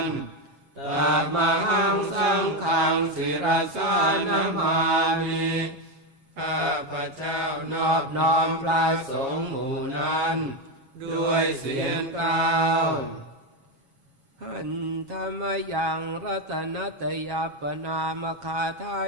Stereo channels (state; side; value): late; left; 7.3 ms